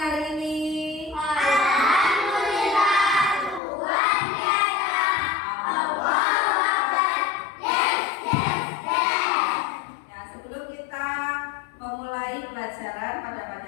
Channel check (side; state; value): right; drops out; at 3.6 s